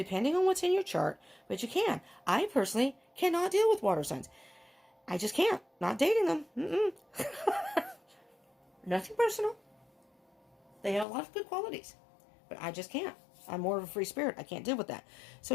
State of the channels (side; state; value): right; drops out; at 11.1 s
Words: on what's in your chart, but you can. I personally cannot deal with water signs. I just can't. Not dating them. Nothing personal. They have a lot of good qualities, but I just can't. I'm more of a free spirit. I can't deal with that.